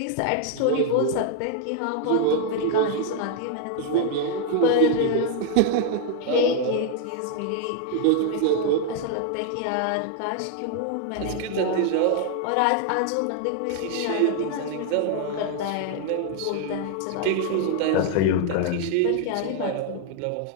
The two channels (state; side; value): different; both; correlation 0.00